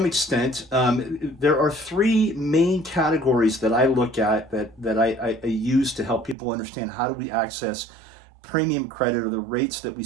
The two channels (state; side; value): drops out; left; at 6.4 s